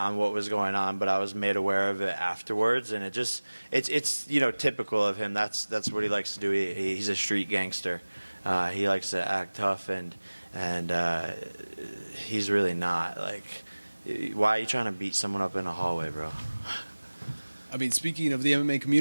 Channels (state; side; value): inverted; both; correlation -1.00